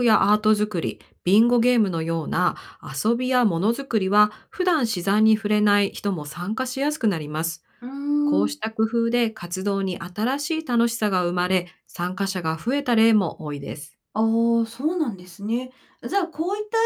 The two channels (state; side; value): identical; both; correlation 1.00